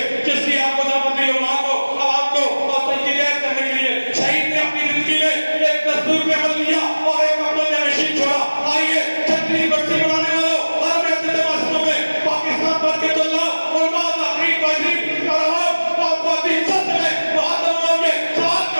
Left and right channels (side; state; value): both; inverted; correlation -1.00